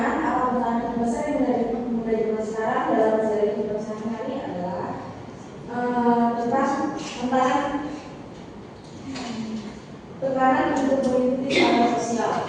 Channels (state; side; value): identical; both; correlation 1.00